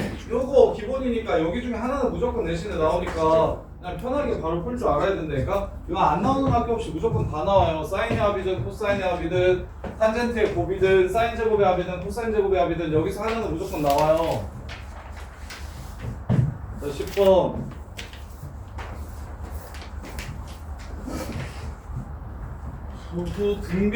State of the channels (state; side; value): identical; both; correlation 1.00